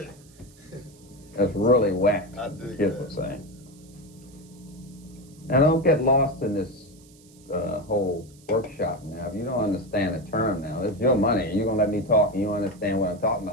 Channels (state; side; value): noise; right; hiss, 27 dB below the sound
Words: That's really whack, kids would say. Now don't get lost in this whole workshop now. If you don't understand the term now, it's your money. You're going to let me talk and you don't understand what I'm talking